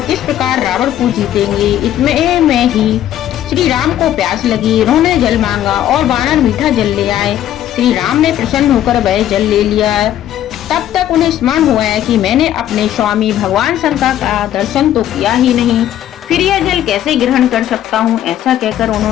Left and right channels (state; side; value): quieter; right; 11.8 dB